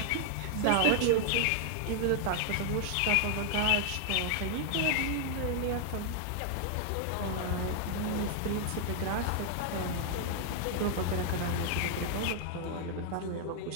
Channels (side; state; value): both; different; correlation 0.00